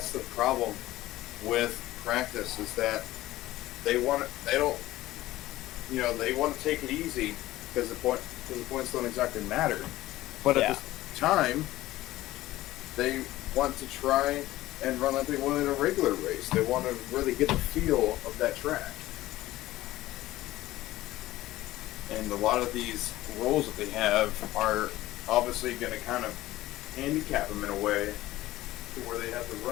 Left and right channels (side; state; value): right; quieter; 16.4 dB